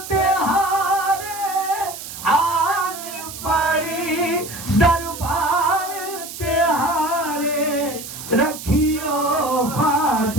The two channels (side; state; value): right; noise; hiss, 11 dB below the sound